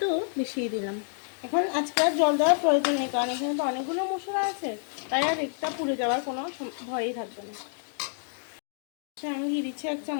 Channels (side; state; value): right; silent; 59 dB below the other